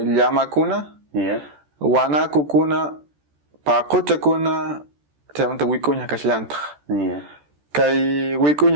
llamakuna, wanakukuna, paquchakuna, chaymanta wikuña kashllantaq. Kay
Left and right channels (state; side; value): late; left; 14 ms